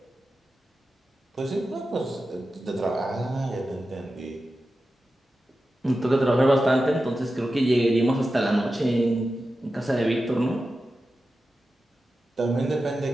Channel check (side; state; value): both; normal; correlation 0.92